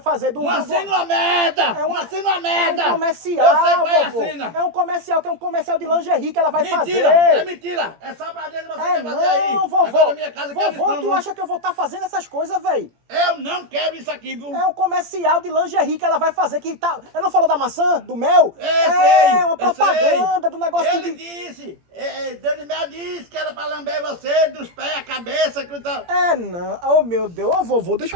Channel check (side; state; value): left; late; 17 ms